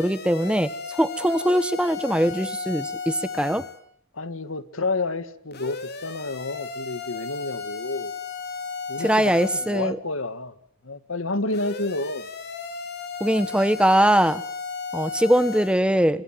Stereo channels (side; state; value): both; normal; correlation 0.67